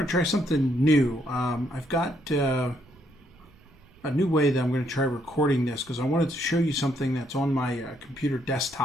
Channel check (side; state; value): right; noise; rumble, 27 dB below the sound